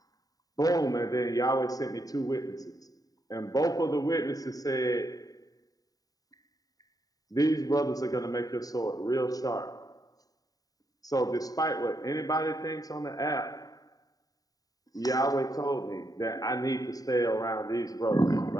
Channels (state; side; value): late; right; 0.18 ms